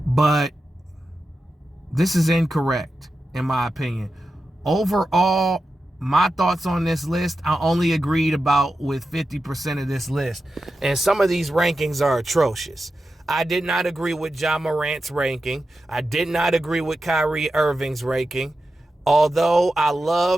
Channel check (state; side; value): normal; both; correlation 0.91